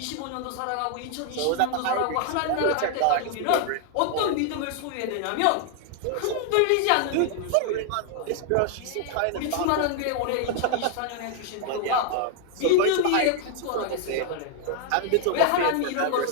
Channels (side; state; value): both; different; correlation 0.00